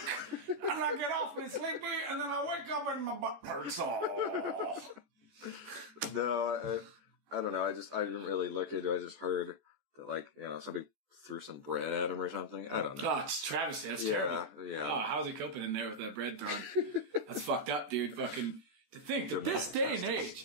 and I get awfully sleepy, and then I wake up and my butt hurts. No, I don't know. I didn't really look into it. I just heard that like somebody threw some bread at him or something. I don't know. Oh, it's travesty. That's terrible. Yeah. Oh, how's he coping in there with that bread thrown? That's fucked up, dude. Fucking to think that this day and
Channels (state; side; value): late; left; 14 ms